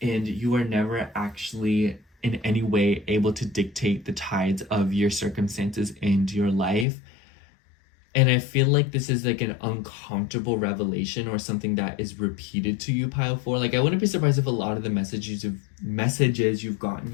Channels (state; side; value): drops out; right; at 6.9 s